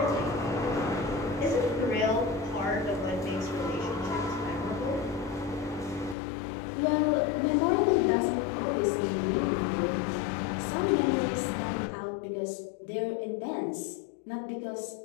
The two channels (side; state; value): right; drops out; at 6.2 s